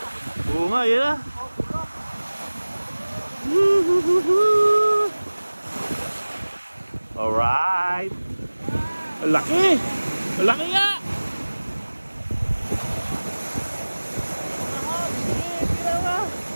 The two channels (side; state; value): both; inverted; correlation -1.00